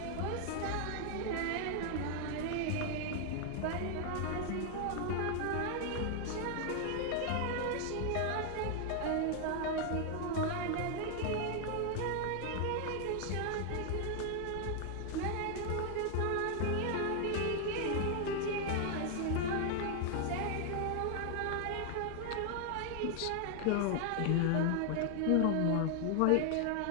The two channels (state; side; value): different; both; correlation 0.00